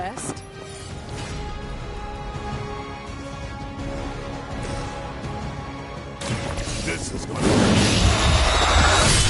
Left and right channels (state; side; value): identical; both; correlation 1.00